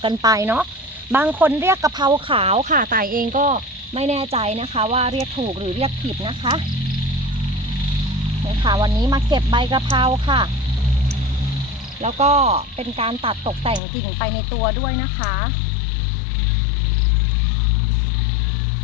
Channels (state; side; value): drops out; right; at 13.8 s